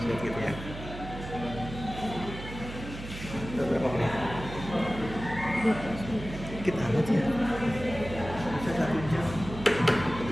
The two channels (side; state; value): right; noise; hum, 11 dB below the sound